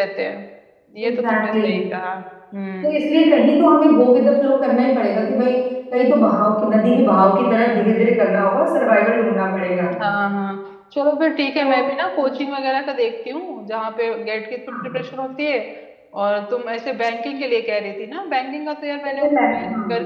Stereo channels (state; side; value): identical; both; correlation 1.00